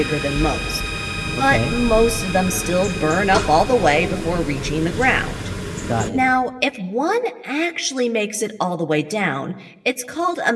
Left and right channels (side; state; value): both; identical; correlation 1.00